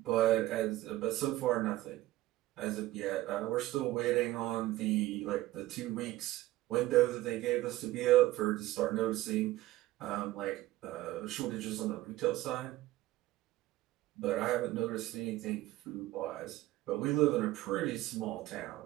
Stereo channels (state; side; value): quieter; left; 16.4 dB